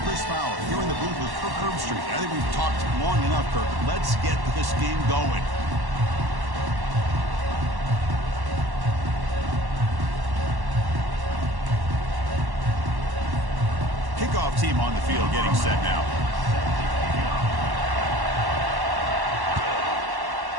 Chris Fowler, here in the booth with Kirk Herbstreit. I think we've talked long enough, Kirk. Let's get this game going. Kickoff team on the field getting set now.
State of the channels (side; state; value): left; late; 1.1 ms